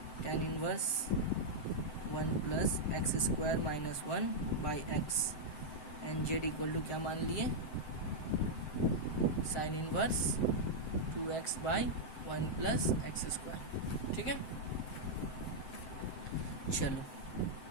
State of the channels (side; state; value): right; late; 7.8 ms